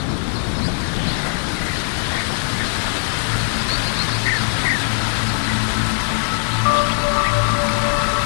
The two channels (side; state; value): right; silent; 65 dB below the other